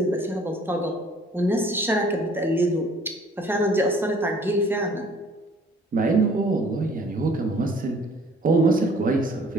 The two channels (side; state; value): both; normal; correlation 0.55